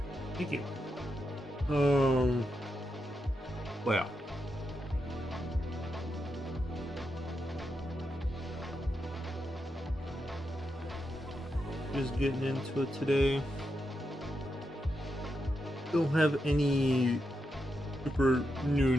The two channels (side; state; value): both; normal; correlation 0.85